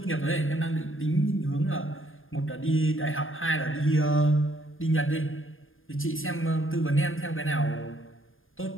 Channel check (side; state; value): right; late; 0.59 ms